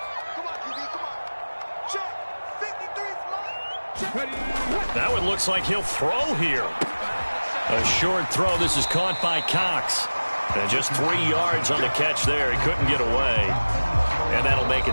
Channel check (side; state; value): both; inverted; correlation -1.00